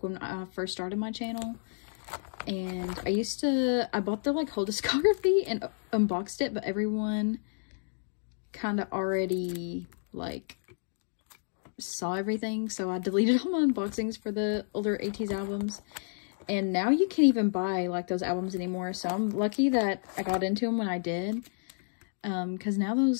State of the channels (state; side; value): silent; right; digital silence